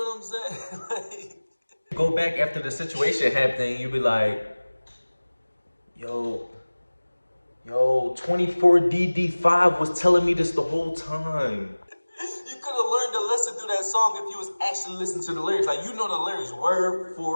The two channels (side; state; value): both; inverted; correlation -1.00